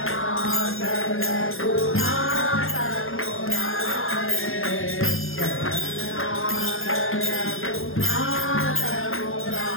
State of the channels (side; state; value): right; late; 0.60 ms